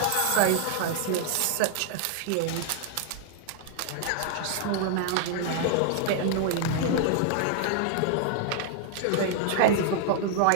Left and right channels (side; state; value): both; different; correlation 0.00